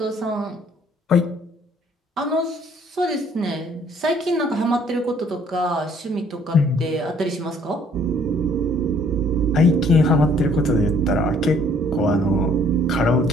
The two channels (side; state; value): both; normal; correlation 0.60